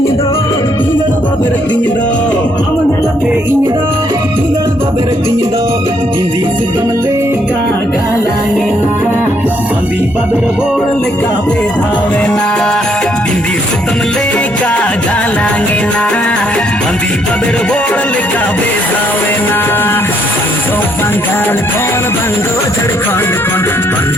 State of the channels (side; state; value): both; normal; correlation 0.70